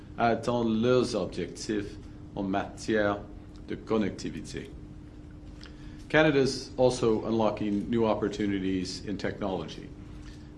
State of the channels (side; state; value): both; identical; correlation 1.00